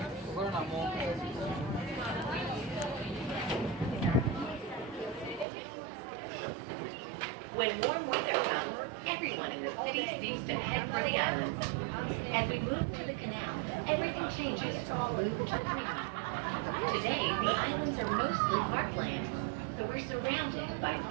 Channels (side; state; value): left; drops out; at 5.5 s